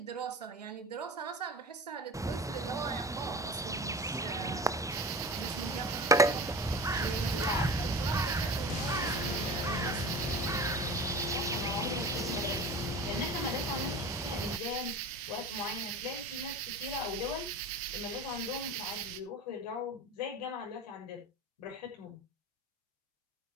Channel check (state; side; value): normal; both; correlation 0.34